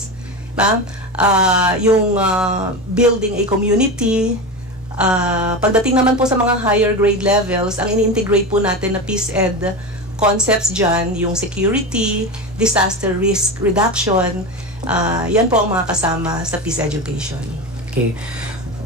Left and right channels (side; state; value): both; normal; correlation 0.22